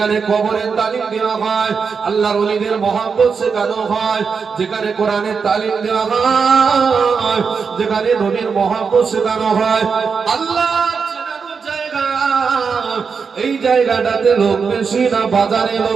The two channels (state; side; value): quieter; left; 5.6 dB